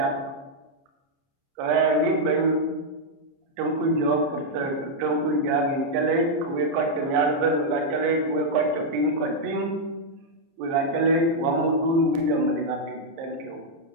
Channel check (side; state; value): left; late; 29 ms